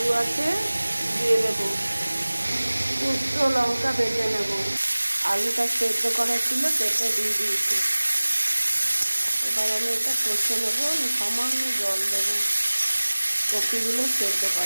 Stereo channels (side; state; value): both; inverted; correlation -1.00